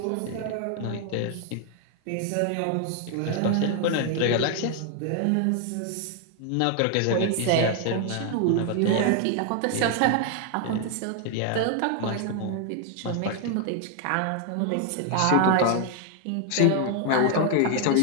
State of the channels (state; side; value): different; both; correlation 0.00